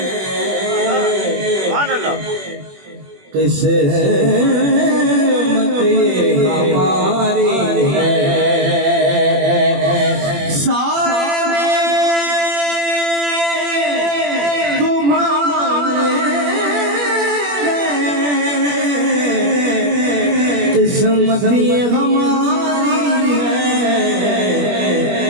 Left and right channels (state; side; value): late; left; 21 ms